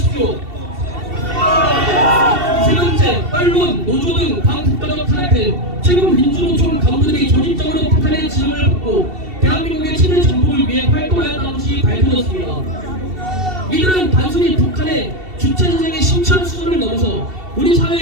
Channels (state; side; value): late; left; 2.7 ms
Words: 세 번째, 언론, 노조 등 반국가적 탄핵. 최근 민주노총 간부들이 조직적으로 탄핵 지령을 받고 대한민국의 친일 정복을 위해 활동하였다는 것이 밝혀졌습니다. 이들은 단순히 북한의 주체사상의 심취한 수준을 넘어서 우리